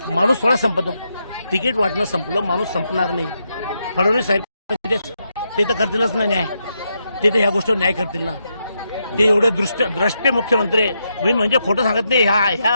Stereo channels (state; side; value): inverted; both; correlation -0.82